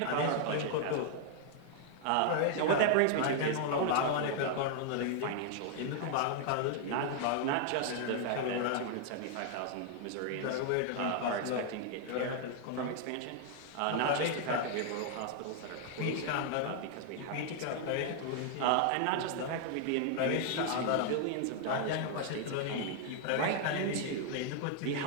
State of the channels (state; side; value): different; both; correlation 0.00